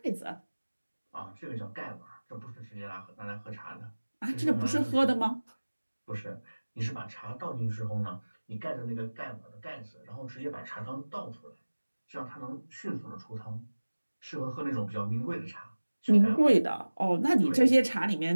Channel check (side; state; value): both; inverted; correlation -1.00